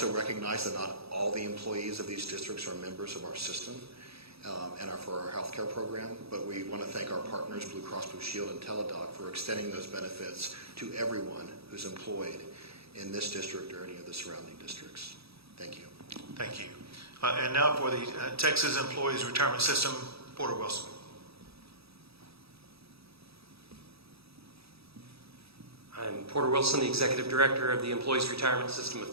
recognize that not all the employees of these districts are members of our system and are for our healthcare program, but we want to thank our partners, Blue Cross Blue Shield and Teladoc, for extending those benefits to everyone who's employed in this district or any of the surrounding districts. Thank you. Thank you. And now for the Texas Employees Retirement System, Porter Wilson. I'm Porter Wilson, the Executive Director of the Employees Retirement System of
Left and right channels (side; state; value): left; late; 0.77 ms